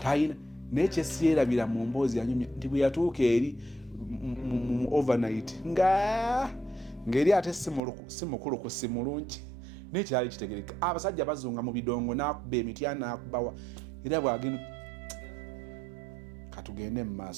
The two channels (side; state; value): left; drops out; at 7.8 s